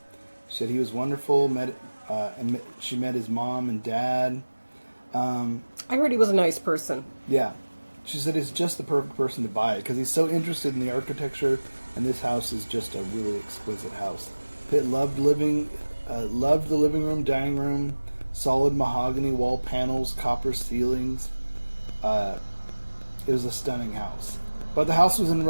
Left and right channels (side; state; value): both; inverted; correlation -1.00